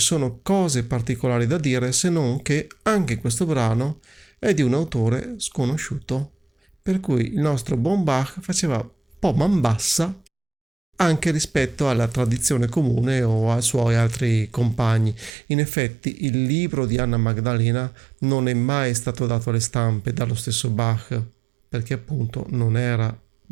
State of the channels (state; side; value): drops out; left; at 15.3 s